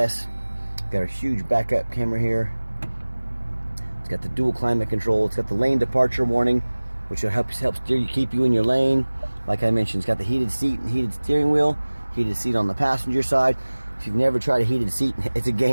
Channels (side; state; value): both; inverted; correlation -1.00